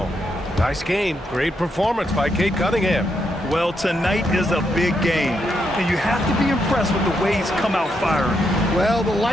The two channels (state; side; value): normal; both; correlation 0.80